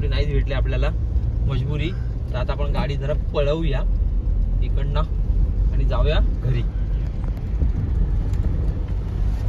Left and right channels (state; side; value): identical; both; correlation 1.00